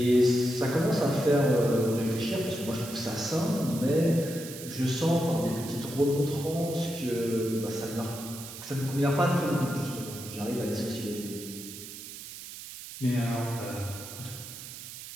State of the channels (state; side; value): noise; right; hiss, 12 dB below the sound